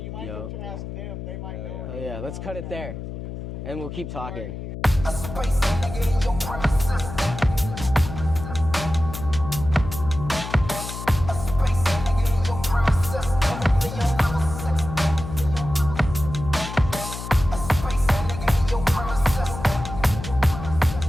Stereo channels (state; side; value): noise; left; hum, 8 dB below the sound